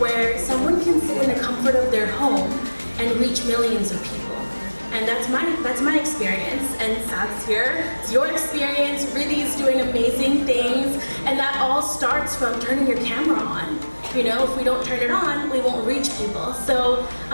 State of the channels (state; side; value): inverted; both; correlation -1.00